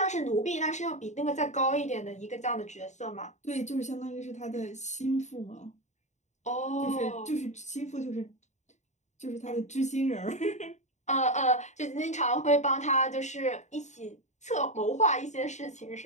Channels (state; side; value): late; right; 0.34 ms